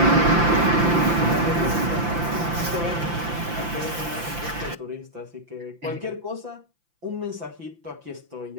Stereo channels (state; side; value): late; left; 5.9 ms